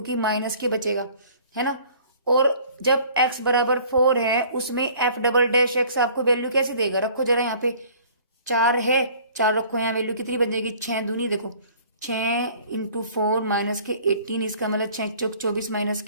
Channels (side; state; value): both; inverted; correlation -0.52